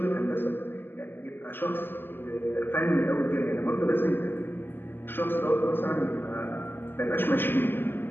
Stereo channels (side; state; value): right; late; 0.099 ms